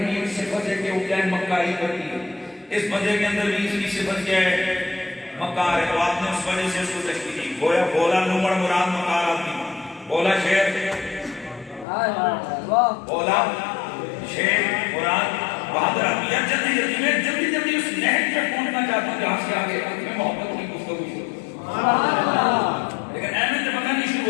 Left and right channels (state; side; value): drops out; right; at 11.9 s